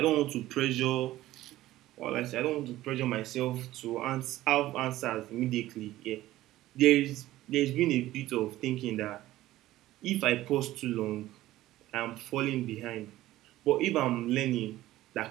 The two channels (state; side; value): quieter; left; 15.5 dB